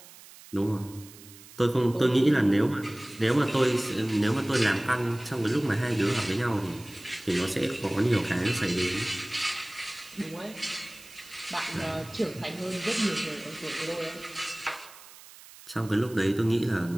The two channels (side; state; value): right; noise; hiss, 20 dB below the sound